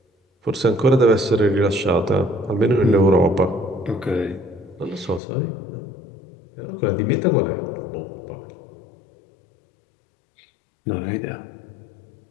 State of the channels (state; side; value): drops out; right; at 5.2 s